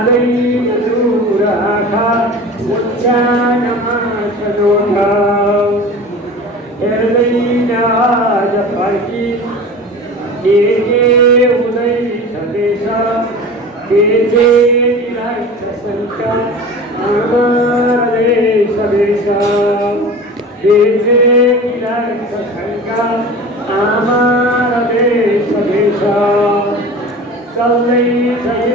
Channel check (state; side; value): normal; both; correlation 0.36